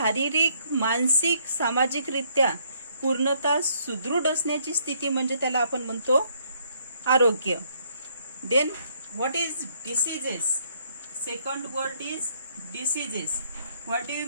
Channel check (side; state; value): both; inverted; correlation -0.68